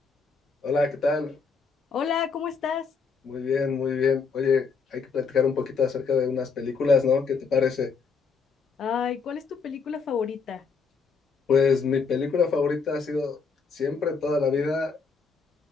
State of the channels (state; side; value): quieter; right; 5.2 dB